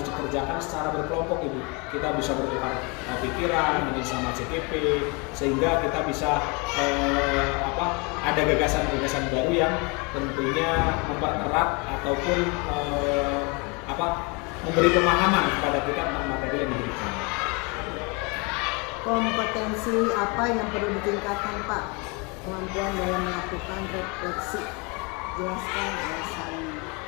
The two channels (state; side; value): quieter; right; 29.5 dB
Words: dikerjakan secara berkelompok Ibu. Kita bisa bertukar pikiran sama CGP sehingga kita bisa ada gagasan-gagasan baru yang tentunya mempererat ataupun memberi pemahaman kepada kita tentang materi yang diberikan. Kompetensi apa yang perlu ditingkatkan Pak? Kemampuan dalam melakukan refleksi, jelaskan alasannya.